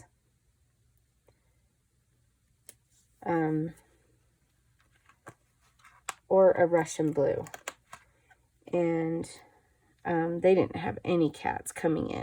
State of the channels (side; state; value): both; identical; correlation 1.00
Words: Or a Russian blue. And they didn't have any cats coming